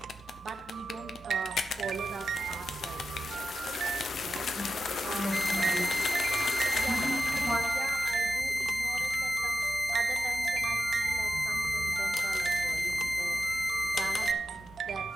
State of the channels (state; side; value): normal; both; correlation 0.90